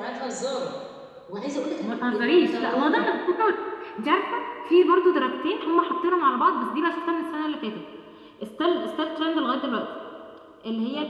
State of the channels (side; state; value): both; identical; correlation 1.00